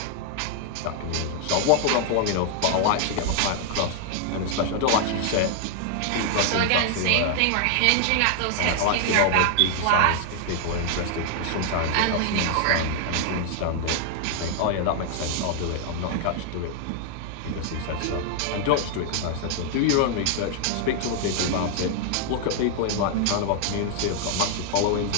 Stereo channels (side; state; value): both; different; correlation 0.00